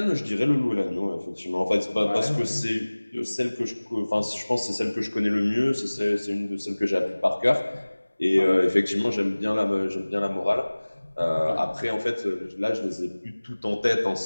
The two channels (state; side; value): inverted; both; correlation -1.00